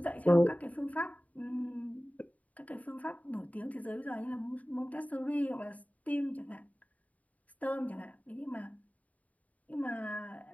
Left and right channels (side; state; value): right; late; 0.070 ms